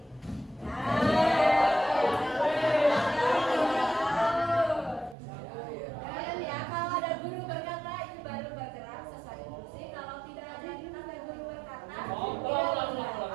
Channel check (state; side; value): drops out; left; at 5.2 s